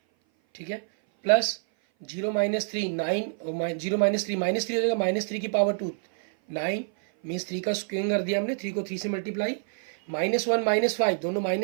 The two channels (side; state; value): left; silent; 57 dB below the other